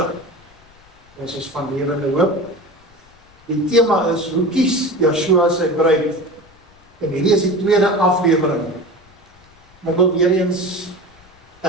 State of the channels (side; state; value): left; noise; rumble, 29 dB below the sound